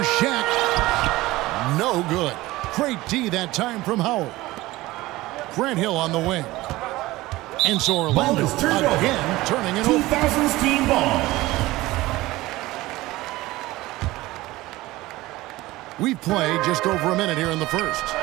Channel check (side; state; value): left; quieter; 18.6 dB